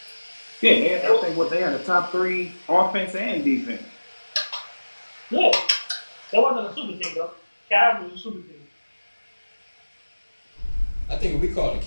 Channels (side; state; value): both; inverted; correlation -1.00